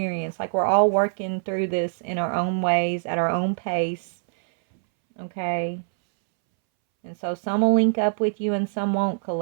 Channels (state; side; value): silent; left; 63 dB below the other